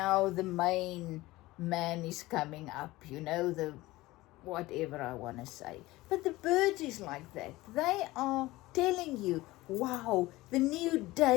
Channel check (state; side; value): quieter; right; 18.9 dB